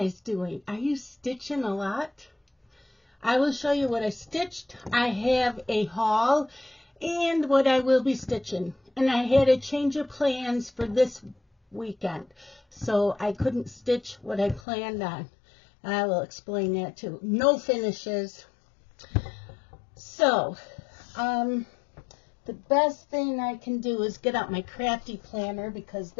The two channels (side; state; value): right; drops out; at 14.6 s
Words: doing? Are you stitching a lot? I will show you what I stitched. I have a haul and what I will be stitching. And I had a change of plans for this weekend, so I couldn't stitch what I planned on. I will explain that too. No finishes. So, the best thing I can do is get out my crafty planner because